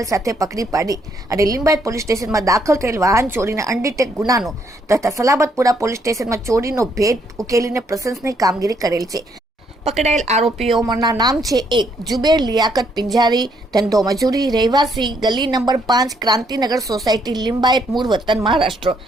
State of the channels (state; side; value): normal; both; correlation 0.71